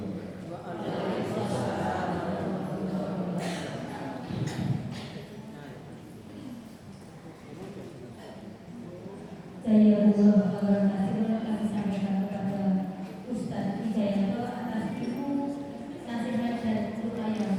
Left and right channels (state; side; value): identical; both; correlation 1.00